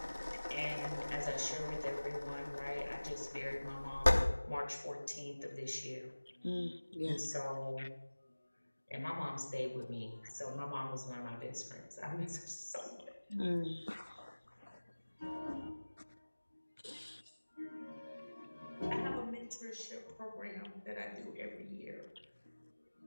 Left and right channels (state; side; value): inverted; both; correlation -1.00